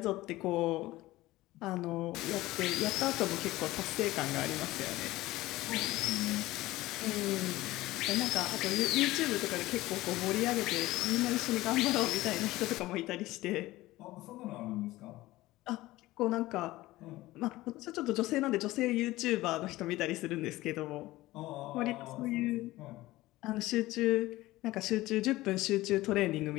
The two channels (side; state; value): right; quieter; 17.8 dB